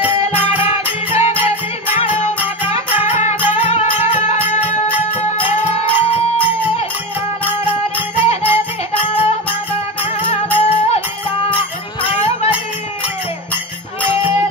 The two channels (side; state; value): both; normal; correlation 0.20